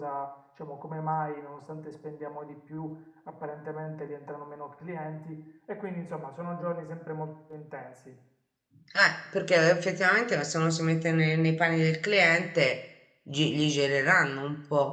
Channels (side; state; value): both; identical; correlation 1.00